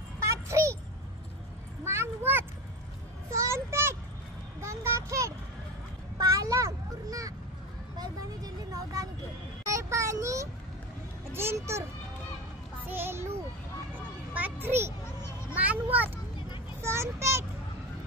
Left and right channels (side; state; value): both; normal; correlation 0.25